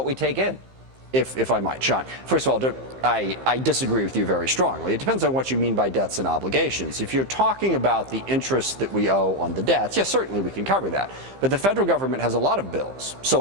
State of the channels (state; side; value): late; left; 15 ms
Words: we take in. If I might, Sean. First of all, I disagree with you very strongly. It depends on what you mean by debts and obligations. If you're talking about the interest that we owe on the debts, yes, certainly we can cover that. But the federal government has a lot of bills: